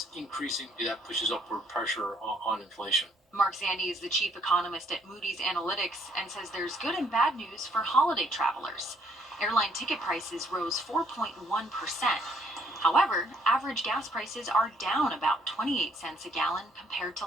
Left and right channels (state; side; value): normal; both; correlation 0.66